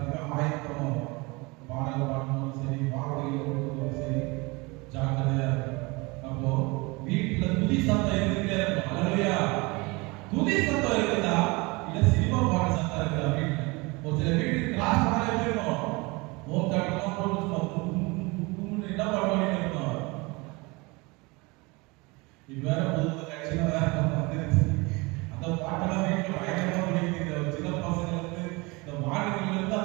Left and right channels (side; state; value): left; quieter; 25.6 dB